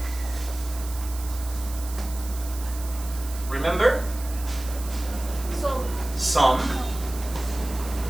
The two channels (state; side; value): noise; right; hiss, 13 dB below the sound